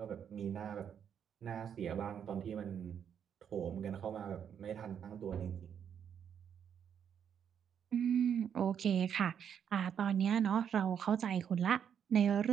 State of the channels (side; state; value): left; quieter; 8.3 dB